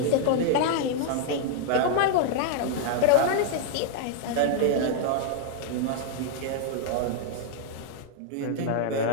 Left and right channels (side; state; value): both; different; correlation -0.01